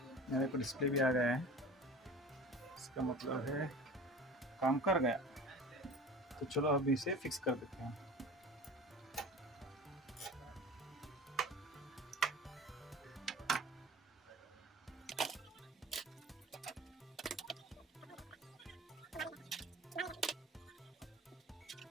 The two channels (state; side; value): normal; both; correlation 0.38